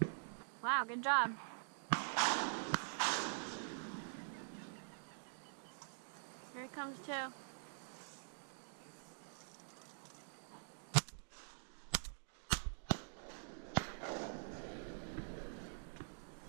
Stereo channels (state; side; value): silent; left; digital silence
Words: Wow, good job. Here it comes too.